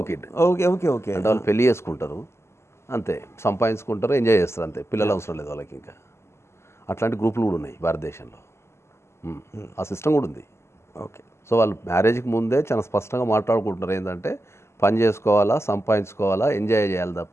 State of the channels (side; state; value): right; late; 0.13 ms